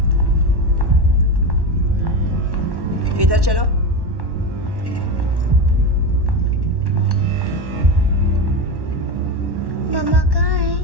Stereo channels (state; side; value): late; left; 1.1 ms